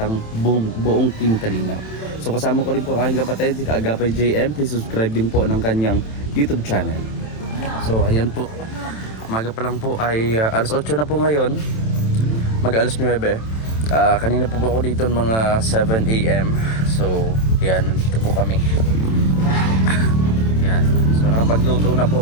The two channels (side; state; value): right; late; 27 ms